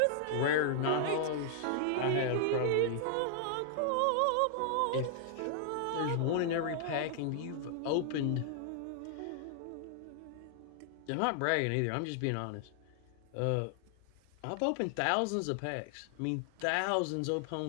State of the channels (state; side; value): different; both; correlation -0.01